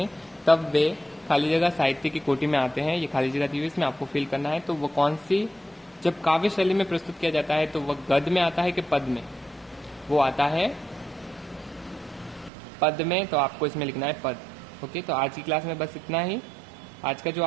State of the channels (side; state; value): left; drops out; at 12.5 s